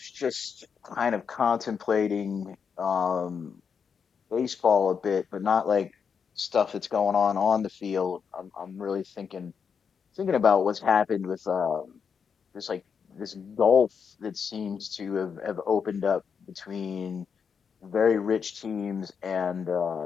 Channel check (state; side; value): quieter; right; 6.5 dB